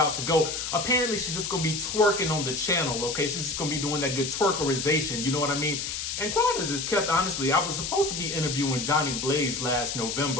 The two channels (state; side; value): noise; left; hiss, 4 dB below the sound